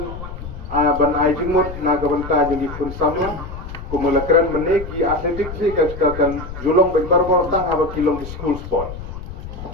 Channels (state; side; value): noise; left; rumble, 10 dB below the sound